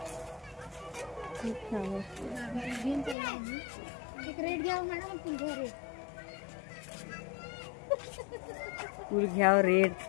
एक रेड घ्यावं मॅडम. फुल घ्या रेड.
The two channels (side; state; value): right; drops out; at 3.2 s